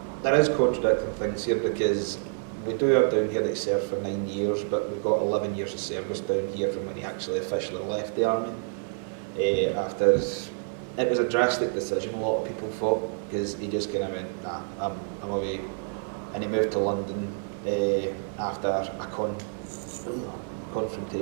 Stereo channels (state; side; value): silent; left; digital silence